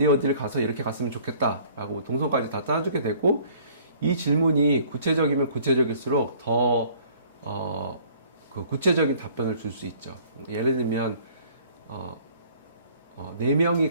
가서 이렇게 갔으면 좋겠다라고 동선까지 다 짜주게 되고, 이 질문이 구체적이면 구체적일수록 더 그 구체적인 답변을 줄 수 있죠. 예를 들면 4명이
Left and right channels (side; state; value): both; inverted; correlation -0.55